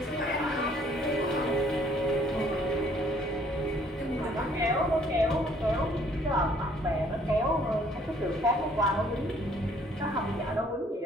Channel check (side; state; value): both; normal; correlation 0.61